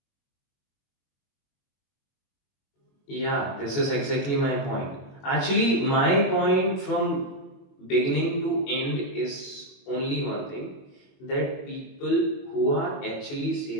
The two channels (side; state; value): right; late; 21 ms